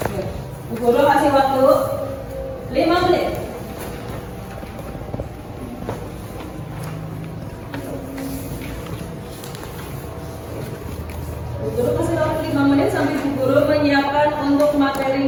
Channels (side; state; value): both; identical; correlation 1.00